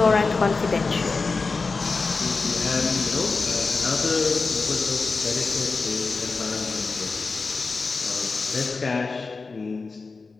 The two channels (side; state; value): right; quieter; 4.2 dB